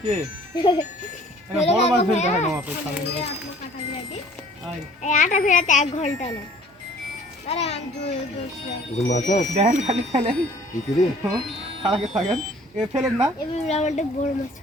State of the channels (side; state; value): both; normal; correlation 0.53